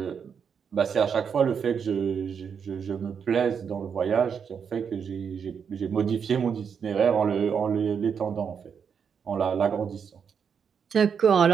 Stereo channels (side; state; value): left; quieter; 6.9 dB